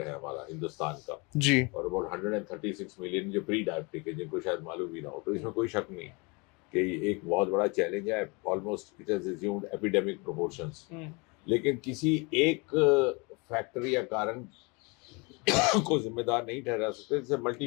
है हमारा हिंदुस्तान का। जी। और अबाउट 136 मिलियन जो प्री डायबिटिक है, जिनको शायद मालूम भी ना हो। तो इसमें कोई शक नहीं कि ये एक बहुत बड़ा चैलेंज है। Almost it has assumed epidemic proportions. लेकिन किसी एक फैक्टर या कारण को जिम्मेदार नहीं ठहरा सकते। It's मल्टी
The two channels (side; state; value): right; quieter; 29.1 dB